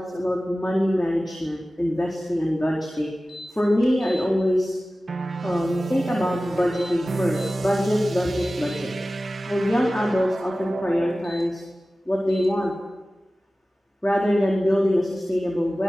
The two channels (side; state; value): both; normal; correlation 0.96